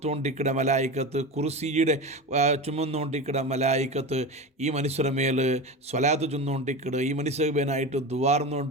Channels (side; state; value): both; normal; correlation 0.25